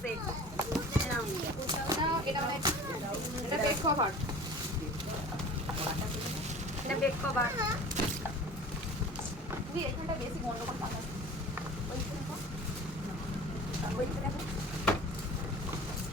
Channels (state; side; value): normal; both; correlation 0.41